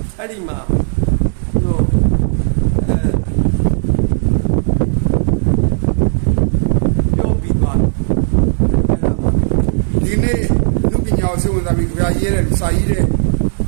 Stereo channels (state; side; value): silent; left; digital silence